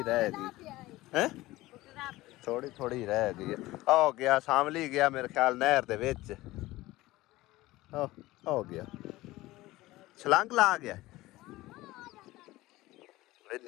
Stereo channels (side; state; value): right; quieter; 18.2 dB